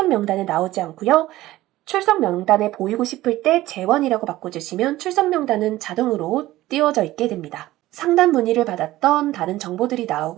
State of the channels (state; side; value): quieter; left; 16.3 dB